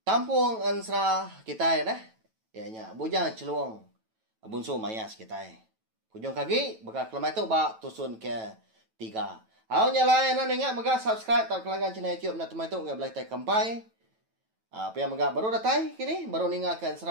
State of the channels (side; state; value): left; late; 9.1 ms